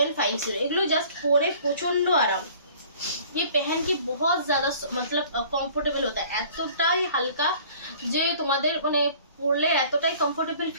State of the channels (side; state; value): both; inverted; correlation -0.50